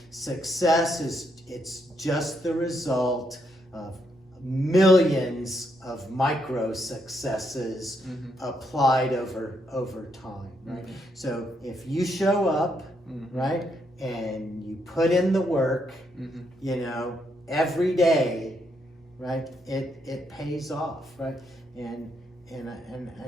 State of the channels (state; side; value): normal; both; correlation 0.77